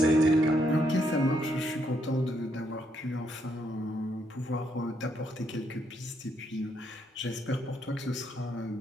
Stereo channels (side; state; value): both; normal; correlation 0.75